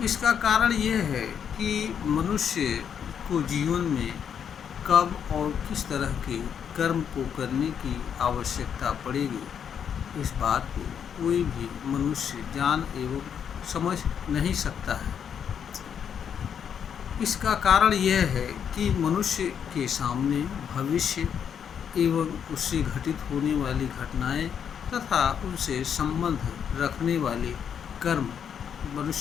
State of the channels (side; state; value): right; quieter; 8.0 dB